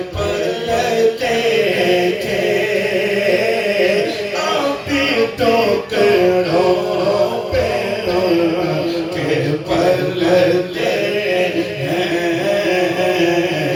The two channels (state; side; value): identical; both; correlation 1.00